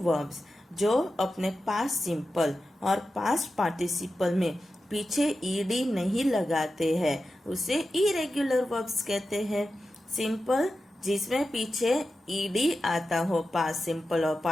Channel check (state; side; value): normal; both; correlation 0.92